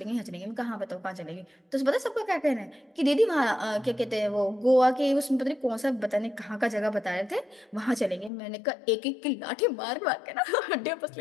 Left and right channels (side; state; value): right; drops out; at 8.3 s